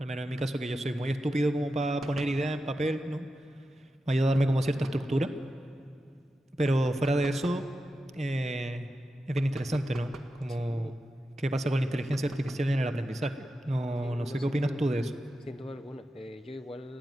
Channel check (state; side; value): normal; both; correlation 0.90